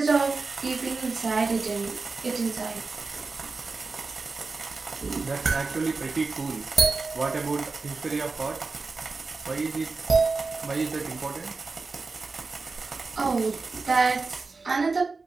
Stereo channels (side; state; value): left; quieter; 4.1 dB